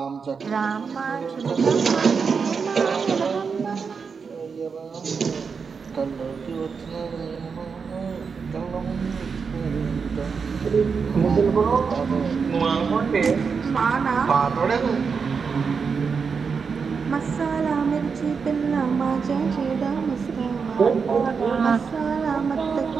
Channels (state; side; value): quieter; left; 5.6 dB